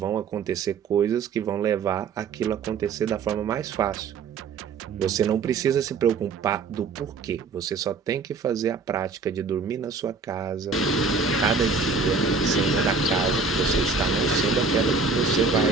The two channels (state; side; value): quieter; left; 4.6 dB